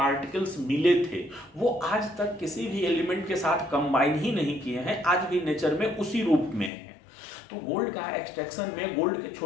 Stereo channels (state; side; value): drops out; right; at 6.7 s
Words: मिले थे वो आज तक किसी भी एलिमेंट के साथ कंबाइन ही नहीं किए हैं, आज भी नेचर में उसी रूप में है। तो गोल्ड का एक्सट्रैक्शन में गोल्ड के